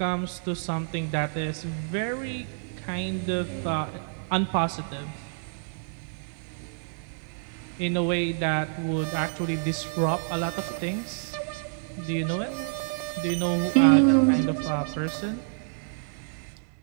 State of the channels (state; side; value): silent; left; digital silence